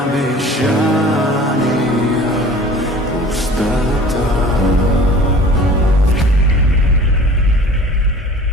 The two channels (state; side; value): normal; both; correlation 0.45